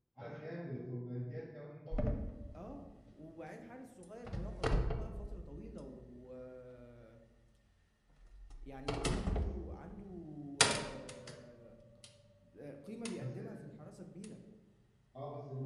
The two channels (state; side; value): identical; both; correlation 1.00